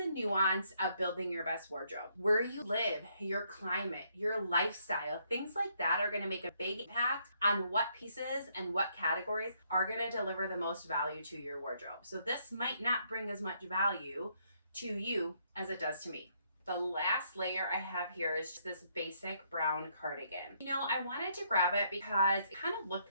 nuance of building your best wardrobe. Where you live, your climate, your lifestyle, things like that are gonna make a big impact on what pieces and what categories are gonna deliver the most value to your wardrobe. So this might not bring as much value to you as it does to me. The last layer I have here is just this basic brown cardigan. You know, I wanted to grab it because it kind of looked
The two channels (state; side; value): inverted; both; correlation -0.72